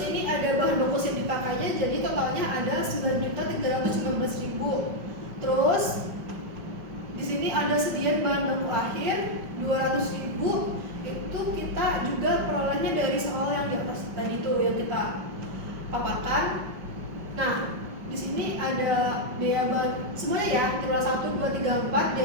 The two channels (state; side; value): late; left; 5.4 ms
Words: ini ada bahan baku yang dipakainya jadi totalnya ada 9.315.000. Terus di sini ada sediaan bahan baku akhir 200.000 itu kita juga perolehnya dari soal yang di atas tadi tuh yang kita paparkan. Nah di sini ada biaya bahan semuanya ya triwulan 1, 2, 3, 4